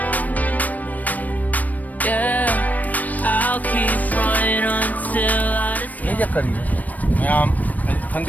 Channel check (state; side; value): late; right; 0.077 ms